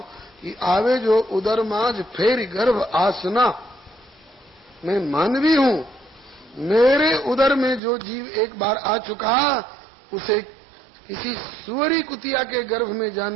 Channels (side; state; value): left; drops out; at 7.8 s